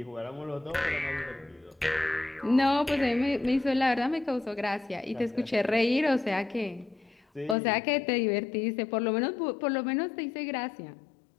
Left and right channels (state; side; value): drops out; right; at 7.6 s